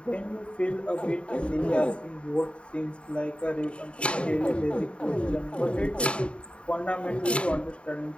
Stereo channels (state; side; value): late; right; 0.058 ms